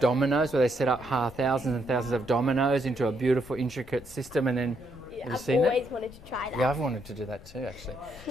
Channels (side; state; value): left; noise; rumble, 20 dB below the sound